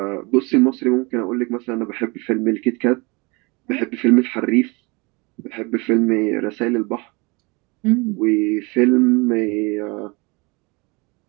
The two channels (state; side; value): quieter; left; 27.3 dB